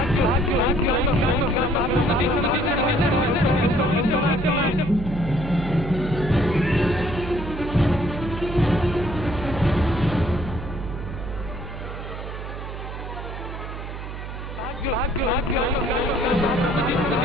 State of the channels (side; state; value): right; noise; hum, 9 dB below the sound